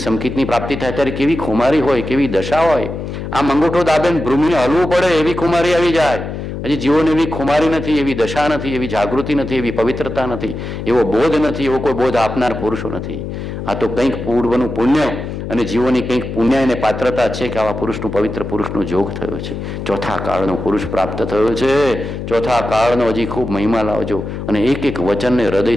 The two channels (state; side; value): noise; left; hum, 7 dB below the sound